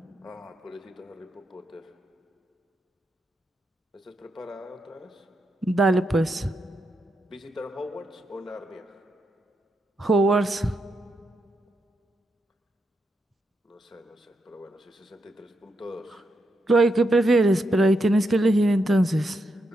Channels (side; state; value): both; normal; correlation 0.82